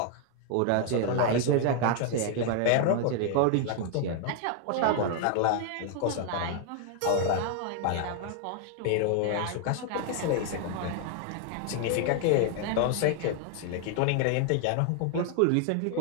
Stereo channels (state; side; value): different; both; correlation 0.00